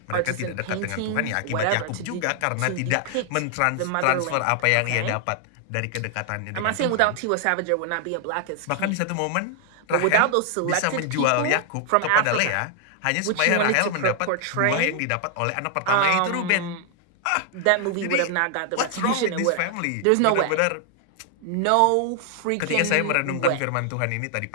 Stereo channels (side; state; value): both; different; correlation 0.00